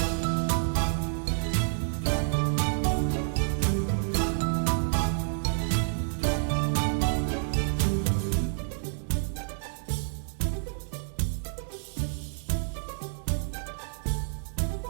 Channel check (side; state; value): left; silent; digital silence